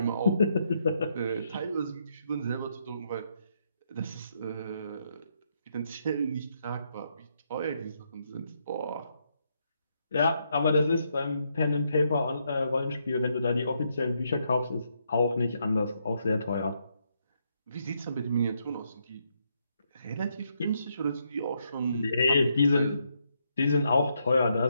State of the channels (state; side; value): inverted; both; correlation -0.77